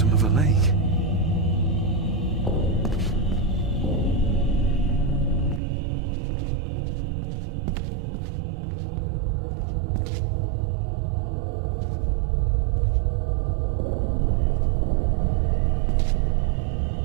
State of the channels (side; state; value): left; drops out; at 5.6 s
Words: of a lake.